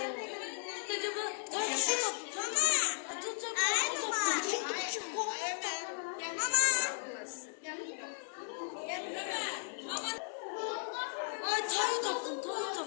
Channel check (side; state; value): right; silent; digital silence